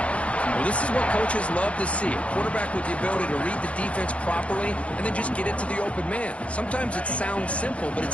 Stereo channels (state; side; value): late; right; 0.063 ms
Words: Well, this is what coaches love to see. A quarterback with the ability to read the defense properly and then just get it to the open man. Sometimes it sounds simple, but